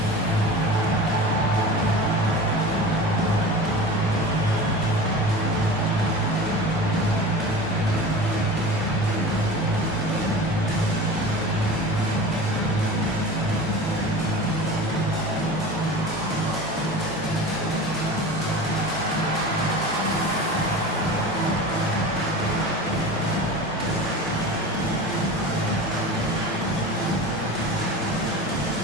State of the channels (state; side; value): normal; both; correlation 0.34